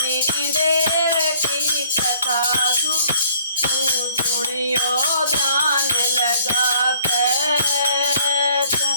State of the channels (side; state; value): both; inverted; correlation -0.58